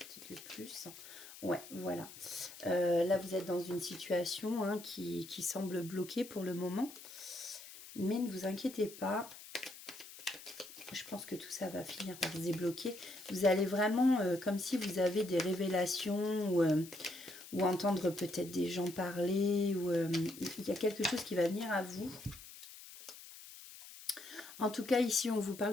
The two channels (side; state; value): left; noise; hiss, 16 dB below the sound